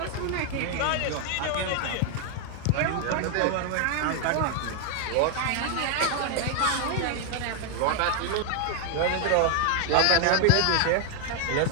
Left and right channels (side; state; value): both; different; correlation 0.00